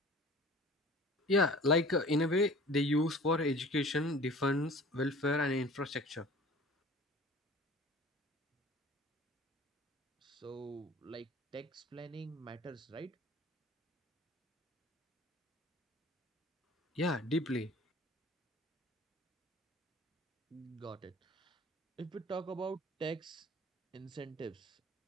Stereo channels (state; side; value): normal; both; correlation 0.44